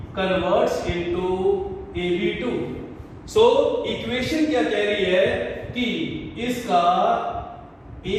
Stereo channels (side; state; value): both; identical; correlation 1.00